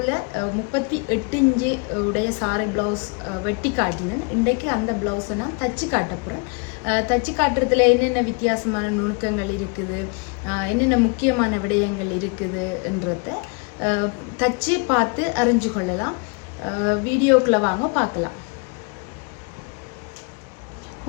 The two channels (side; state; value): right; quieter; 32.8 dB